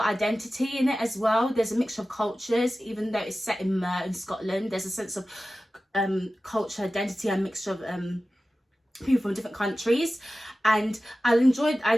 identity in it as well. There's a mixture of cultures, even though it's set in Mer in Scotland. There's a sense of culture identity and mixture of people from different countries. And I enjoyed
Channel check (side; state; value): both; normal; correlation 0.95